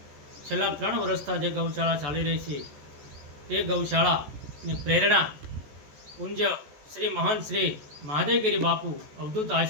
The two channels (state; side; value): late; left; 14 ms